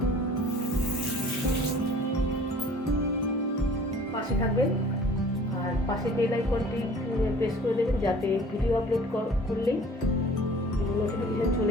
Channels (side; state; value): both; normal; correlation 0.49